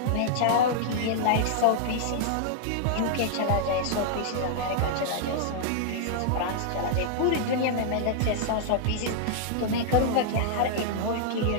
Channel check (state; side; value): different; both; correlation -0.01